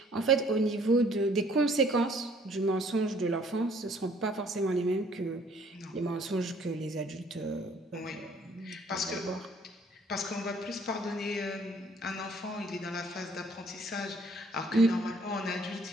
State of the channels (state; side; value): normal; both; correlation 0.59